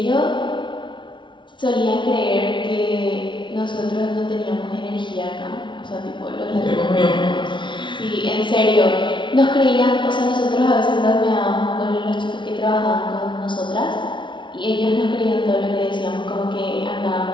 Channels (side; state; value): right; late; 0.24 ms